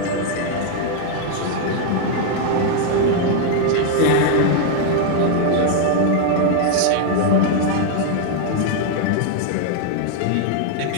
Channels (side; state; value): both; different; correlation 0.00